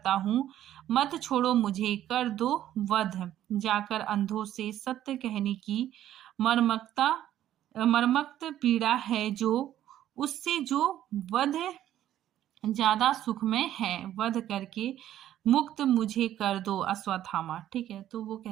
हूँ, मत छोड़ो मुझे, कर दो वध, जाकर अंधों से सत्य कहने की मर्मक्त पीड़ा है, जो उससे जो वध ज्यादा सुखमय है, वध करके मुक्त मुझे कर दो अश्वत्थामा, ठीक है। तो वो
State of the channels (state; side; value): quieter; left; 12.1 dB